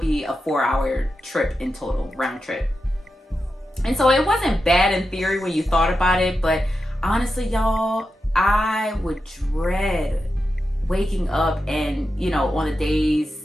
be a 4-hour trip in total, round trip. And so it wasn't bad in theory when you thought about it, but honestly, y'all, I would dread waking up and, on the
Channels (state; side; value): normal; both; correlation 0.89